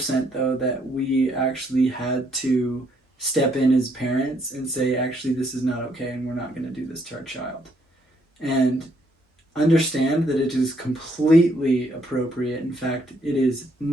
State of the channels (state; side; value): normal; both; correlation 0.70